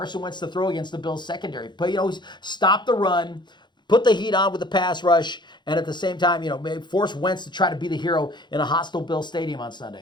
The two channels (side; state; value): right; late; 0.22 ms